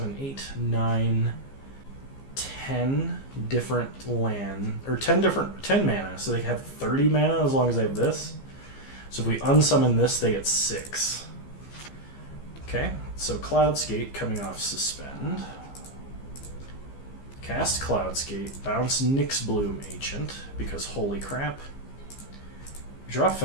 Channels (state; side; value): late; right; 15 ms